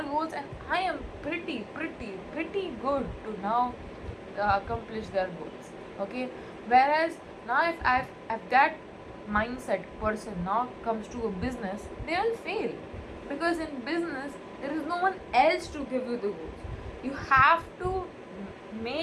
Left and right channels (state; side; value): identical; both; correlation 1.00